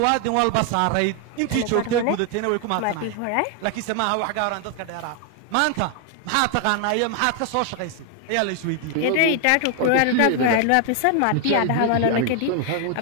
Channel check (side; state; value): both; different; correlation 0.00